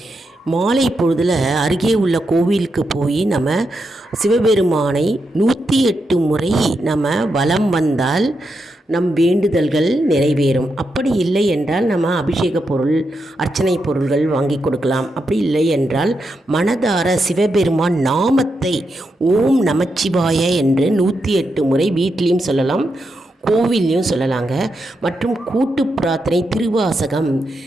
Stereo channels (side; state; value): both; normal; correlation 0.85